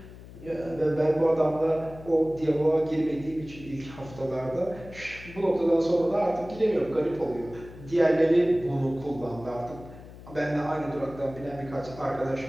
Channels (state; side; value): noise; left; hum, 17 dB below the sound